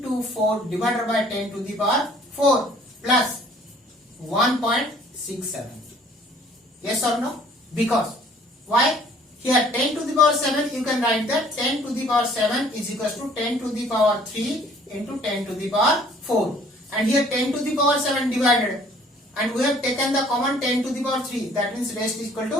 divided by 10 to the power 4 plus 1.67. Yes or no? Because why? Here 10 to the power 7, you can write that 10 to the power 7 is equals to 10 to the power 3 into 10 to the power 4. And here 10 to the power 7 divided. And we have taken the common 10 to the power 3. That means rest is equal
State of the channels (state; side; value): normal; both; correlation 0.56